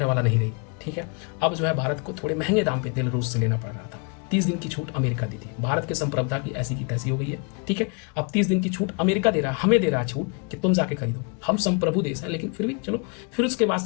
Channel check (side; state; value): right; quieter; 35.1 dB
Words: वाला नहीं रही। ठीक है, अब जो है भारत को थोड़े महंगे दाम पे तेल रूस से लेना पड़ रहा था। 30 दिन की छूट अमेरिका दी थी। भारत के संप्रभुता की ऐसी की तैसी हो गई है। ठीक है, अब 30 दिन की छूट अमेरिका दे रहा है, हमें दे रहा है छूट कि तुम जाके खरीदो। हम संप्रभु देश हैं, लेकिन फिर भी चलो। फिर उसके बाद